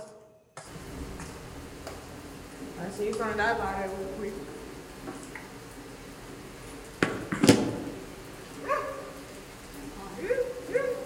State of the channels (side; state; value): both; identical; correlation 1.00